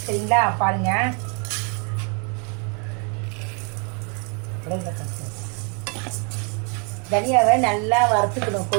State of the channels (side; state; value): left; quieter; 37.2 dB